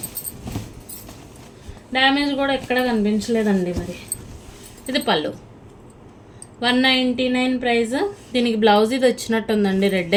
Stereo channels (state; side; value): identical; both; correlation 1.00